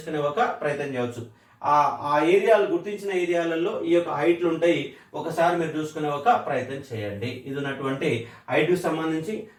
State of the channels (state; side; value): identical; both; correlation 1.00